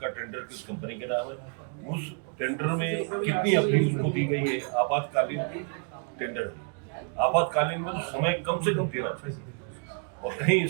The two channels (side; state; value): left; quieter; 38.6 dB